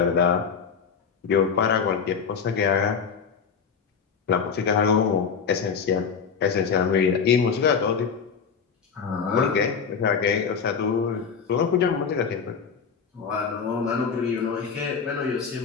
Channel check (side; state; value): right; quieter; 6.2 dB